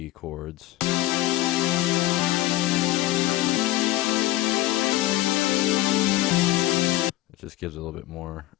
chords. It just gives it a little bit more.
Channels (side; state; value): right; quieter; 16.8 dB